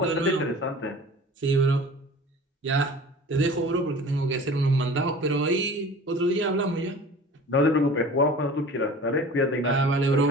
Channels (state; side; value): normal; both; correlation 0.41